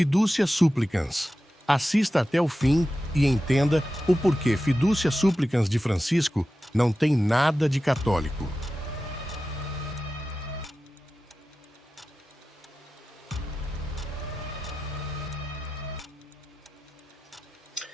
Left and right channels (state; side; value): normal; both; correlation 0.93